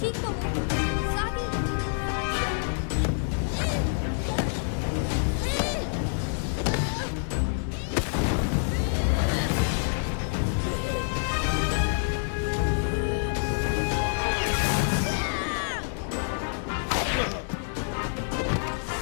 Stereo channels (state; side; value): silent; right; digital silence